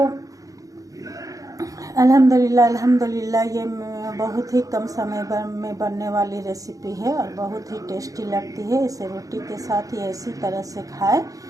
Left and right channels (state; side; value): late; left; 0.17 ms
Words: अल्हम्दुलिल्लाह, ये बहुत ही कम समय में बनने वाली रेसिपी है और बहुत ही टेस्टी लगती है। इसे रोटी के साथ ही इसी तरह से खाएं।